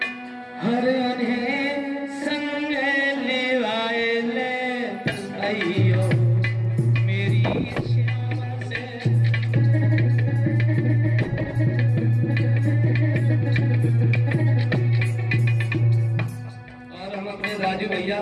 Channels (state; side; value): identical; both; correlation 1.00